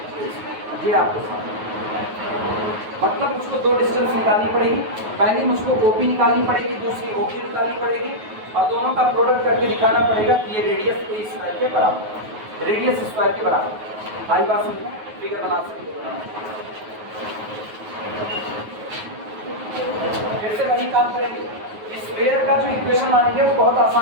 ये आपको मतलब मुझको दो डिस्टेंस निकालनी पड़ेगी। पहली मुझको OP निकालनी पड़ेगी, दूसरी OQ निकालनी पड़ेगी और दोनों का प्रोडक्ट करके दिखाना पड़ेगा कि ये रेडियस A स्क्वायर के बराबर, रेडियस स्क्वायर के बराबर। आई बात समझ, फिगर बना सकते हो। फिर से वही काम करेंगे। स्क्वायर का जो इक्वेशन मानेंगे वो बहुत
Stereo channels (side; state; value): left; late; 9.4 ms